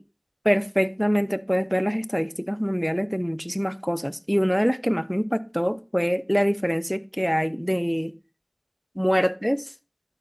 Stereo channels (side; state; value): both; identical; correlation 1.00